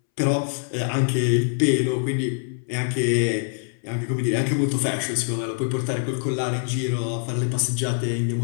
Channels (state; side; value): silent; right; 63 dB below the other